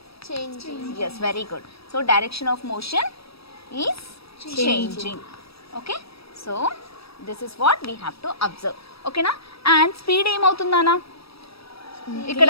Yes, very good. So direction of motion is changing. Okay, so this is what we have to observe. ఓకేనా? And speed ఏమవుతుందానా ఇక్కడ?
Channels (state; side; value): late; right; 0.77 ms